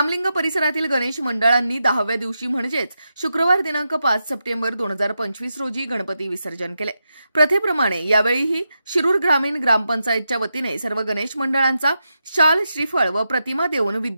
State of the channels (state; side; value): inverted; both; correlation -0.87